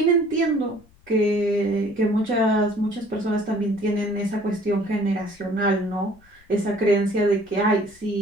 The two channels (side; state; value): left; noise; rumble, 29 dB below the sound